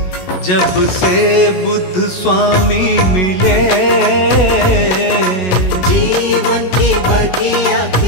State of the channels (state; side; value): late; right; 16 ms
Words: जब से बुद्ध स्वामी मिले, जीवन की बगिया